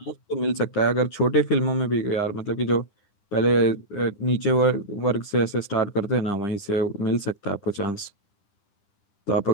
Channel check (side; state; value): right; late; 9.9 ms